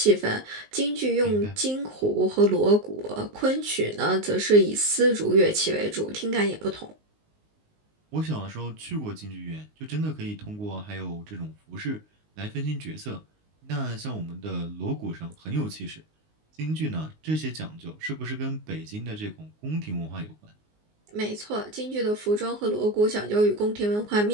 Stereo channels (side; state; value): left; late; 19 ms